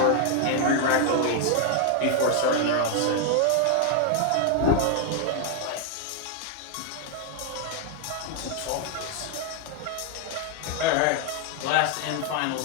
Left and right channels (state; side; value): different; both; correlation 0.00